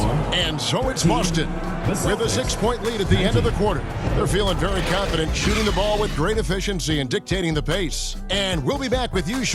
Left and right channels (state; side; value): identical; both; correlation 1.00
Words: And so it's Boston with a 6-point lead at the end of the quarter. They're feeling very confident, shooting the ball with great efficiency and dictating the pace. And we'll be back with you